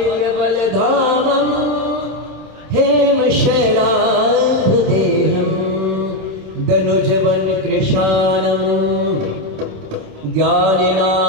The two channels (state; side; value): late; left; 27 ms